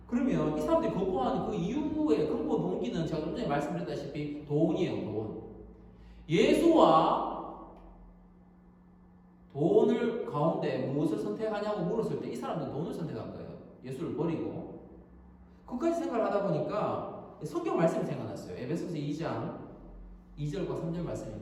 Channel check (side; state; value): both; identical; correlation 1.00